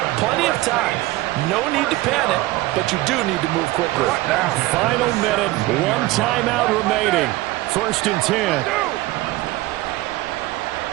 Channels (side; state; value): left; quieter; 18.5 dB